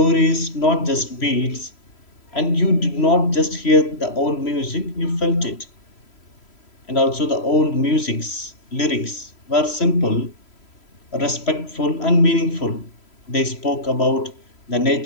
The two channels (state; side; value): late; right; 3.0 ms